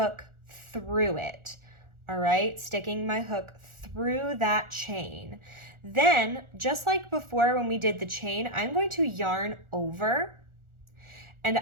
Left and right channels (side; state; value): left; late; 1.4 ms